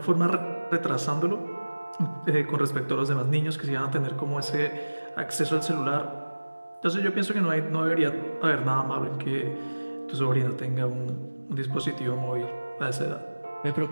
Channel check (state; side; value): inverted; both; correlation -1.00